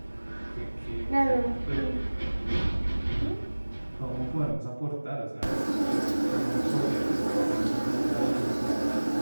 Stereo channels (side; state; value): both; inverted; correlation -1.00